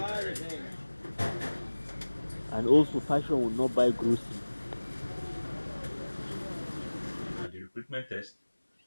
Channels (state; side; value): inverted; both; correlation -1.00